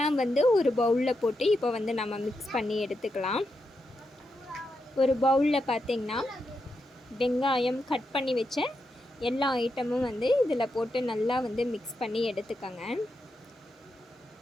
ஒரு பவுலில் போட்டு இப்போ நம்ம மிக்ஸ் பண்ணி எடுத்துக்கலாம். ஒரு பவுலில் பார்த்திங்கன்னா வெங்காயம் கட் பண்ணி வச்ச எல்லா ஐட்டமும் இதில் போட்டு நல்லா மிக்ஸ் பண்ணி எடுத்துக்கோங்க.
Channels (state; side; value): normal; both; correlation 0.85